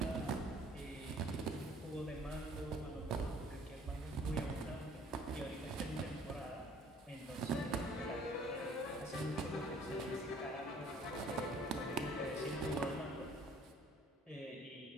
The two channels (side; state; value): both; normal; correlation 0.56